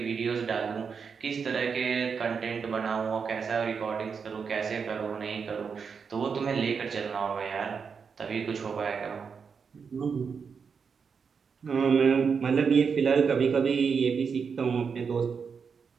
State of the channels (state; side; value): quieter; left; 6.0 dB